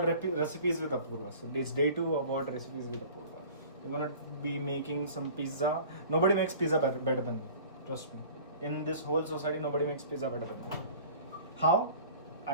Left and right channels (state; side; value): inverted; both; correlation -0.44